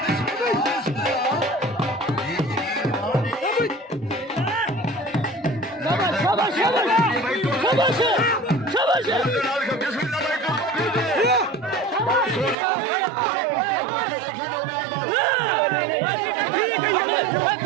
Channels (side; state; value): left; drops out; at 12.6 s